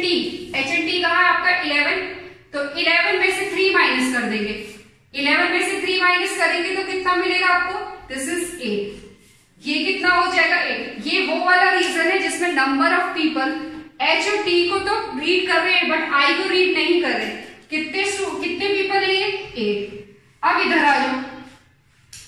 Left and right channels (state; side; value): identical; both; correlation 1.00